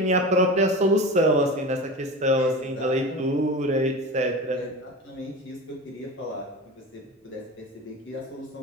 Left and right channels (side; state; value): both; normal; correlation 0.30